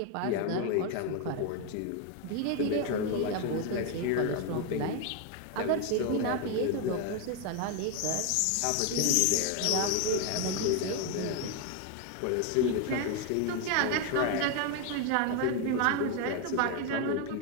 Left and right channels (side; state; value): both; different; correlation 0.01